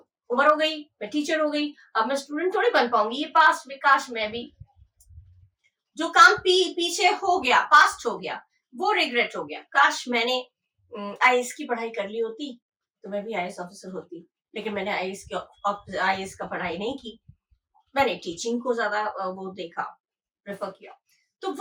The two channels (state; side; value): identical; both; correlation 1.00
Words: उम्र हो गई, मैं टीचर हो गई, अब मैं स्टूडेंट थोड़ी बन पाऊंगी। ये पास्ट में, काश मैं भी, जो काम पीछे हो गया, पास्ट हो गया, वो रिग्रेट हो गया। काश मैंने आईएएस की पढ़ाई कर ली होती तो मैं भी आईएएस ऑफिसर होती, लेकिन मैंने आईएएस का पढ़ाई नहीं की, मैंने टीचिंग को ज्यादा वो देखा, प्रेफर किया। तो